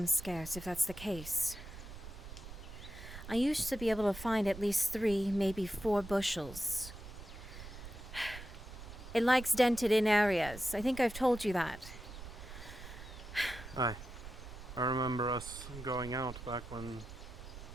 scarce, if that's the case. I used to be able to find at least 3, maybe 4 bushels. It likes dented-in areas. I think I've told you that. Aye. I remember us going out back when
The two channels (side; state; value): right; noise; rumble, 13 dB below the sound